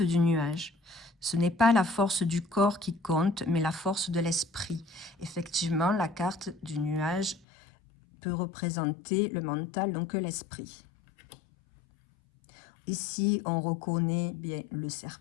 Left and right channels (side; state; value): right; drops out; at 7.4 s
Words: du nuage. Ce n'est pas la force du corps qui compte, mais la force de l'esprit. Effectivement, la carte du nuage peut représenter le mental, donc l'esprit. Ici, on reconnaît bien le